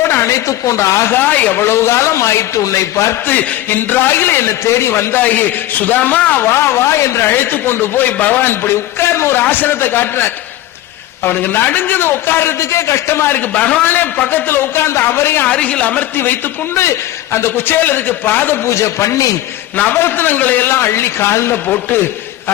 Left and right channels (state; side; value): quieter; right; 14.6 dB